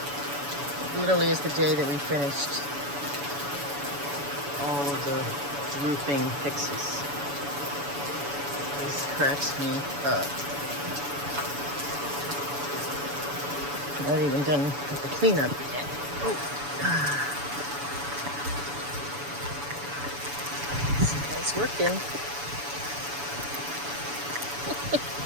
literally is the day that we finished all of the roofing fixes. This cracks me up. Not even done with the cleanup yet. Oh. It's working.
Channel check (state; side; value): late; left; 7.0 ms